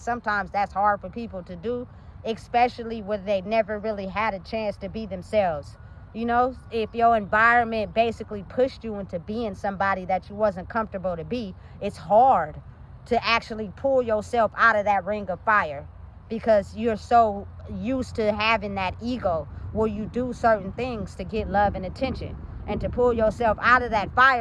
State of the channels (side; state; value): both; identical; correlation 1.00